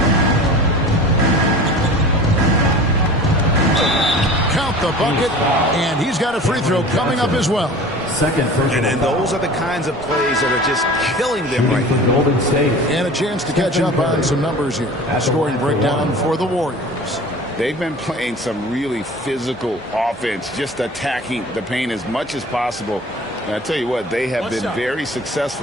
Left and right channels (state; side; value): normal; both; correlation 0.40